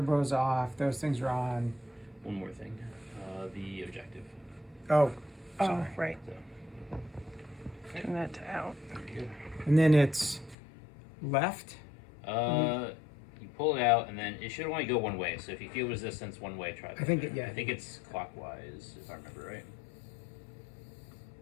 off, those things are on. One more thing, the objective. Oh, Oh, sorry. right. So, Turn that to out. And then it's left. You pull it out, and then it should only go one way. So if you feel resistance one way, try that. I think there. yeah. I think it's clockwise, if I remember right.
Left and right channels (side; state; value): right; drops out; at 10.6 s